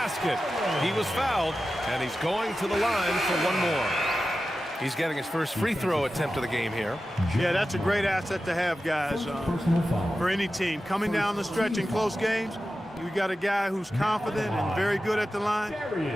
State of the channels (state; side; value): normal; both; correlation 0.93